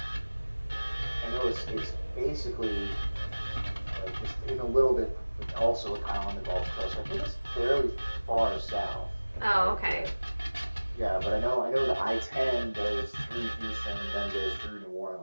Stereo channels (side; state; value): both; inverted; correlation -1.00